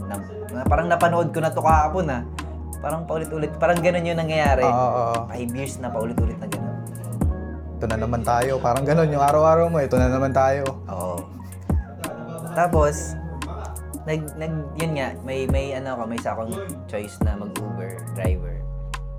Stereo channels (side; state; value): both; identical; correlation 1.00